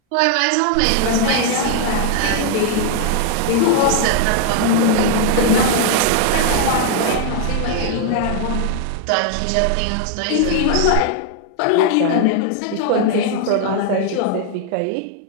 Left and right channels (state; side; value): different; both; correlation 0.00